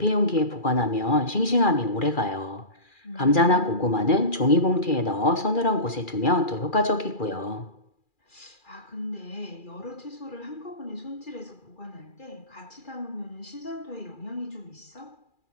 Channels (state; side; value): late; right; 2.4 ms